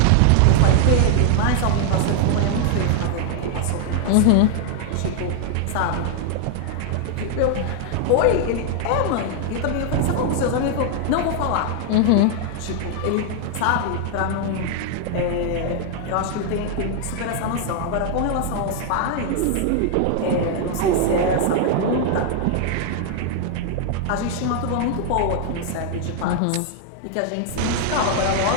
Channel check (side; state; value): both; different; correlation 0.00